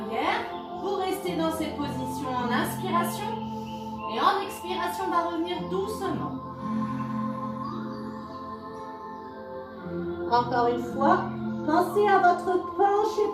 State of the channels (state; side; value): identical; both; correlation 1.00